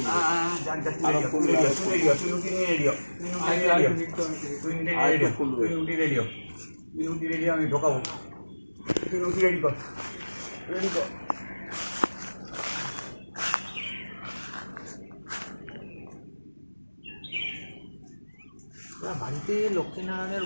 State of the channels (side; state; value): both; inverted; correlation -1.00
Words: আমি ঢোকাবো, তুই রুটি রেডি কর, রেডি কর। বাড়িতে লক্ষ্মীনারায়ণের